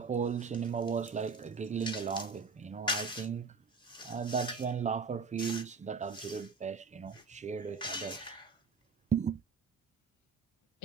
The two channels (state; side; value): quieter; left; 4.9 dB